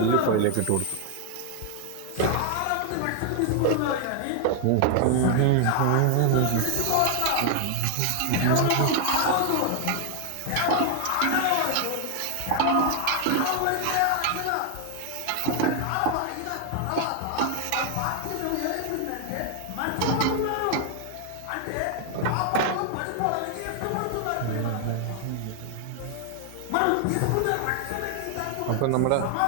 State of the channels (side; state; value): both; different; correlation 0.00